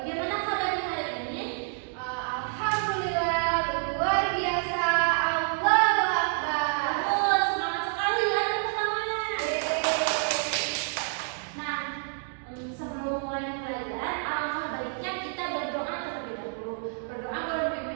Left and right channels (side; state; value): left; silent; 59 dB below the other